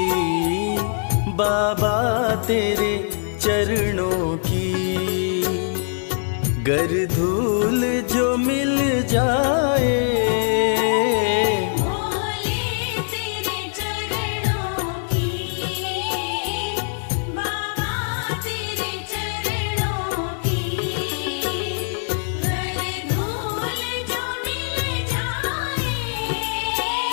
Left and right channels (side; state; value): right; silent; digital silence